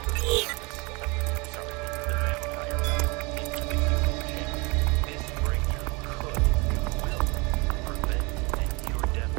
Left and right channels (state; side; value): quieter; left; 27.6 dB